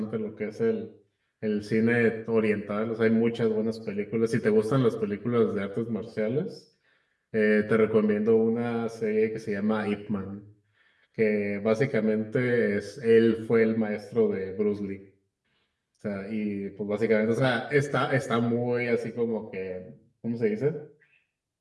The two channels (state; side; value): identical; both; correlation 1.00